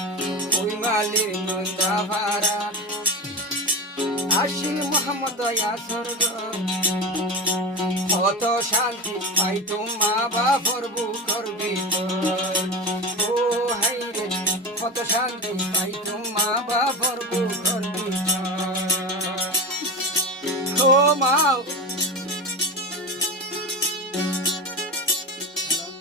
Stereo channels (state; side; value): normal; both; correlation 0.24